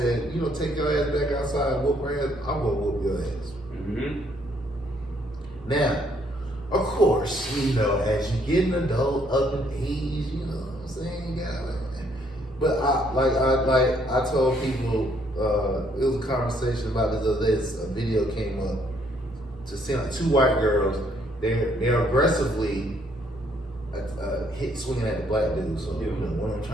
"You don't take your ass back outside and whoop her ass. I'm gonna whoop your ass." Mm-hmm. Now, of course, you know, as you get an adult, up in age, you know what I'm saying, you got it. But I told people, it was a conversation about this other day. A video came up to see like two white girls. They're aggressively swinging at the black dude. So you know, one of them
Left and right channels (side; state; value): both; normal; correlation 0.68